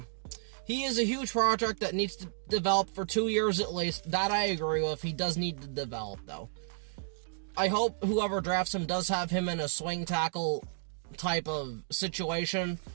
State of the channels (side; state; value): left; silent; digital silence